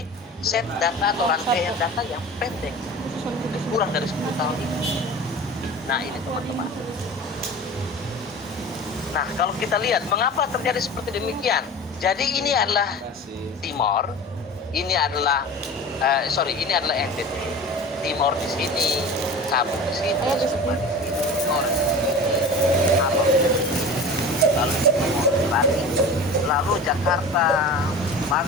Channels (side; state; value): both; normal; correlation 0.35